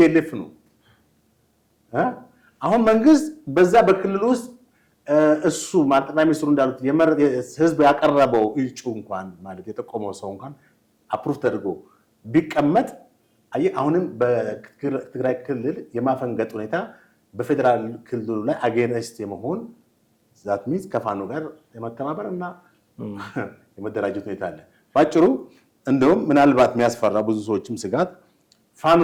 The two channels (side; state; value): both; identical; correlation 1.00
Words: ነው። አሁን መንግስት በዛ በክልል ውስጥ እሱ ጠቅላይ ሚኒስትሩ እንዳሉት ህዝብ ያቀረበው እጩ እንኳን ማለት የጠቆመው ሰው እንኳን አፕሩቭ ተደርጎ ቢቀመጥ አሁንም በትግራይ ክልል የማፈንገጥ ሁኔታ በፌዴራል ክልሉ ላይ አጌንስት የመሆን ዛት ሚንስ ከፋኖ ጋር የመተባበር እና የመደራጀት ሁኔታ አለ። ባጭሩ እንደውም ምናልባት የሚያስፈራ ብዙ ሰዎችም ስጋት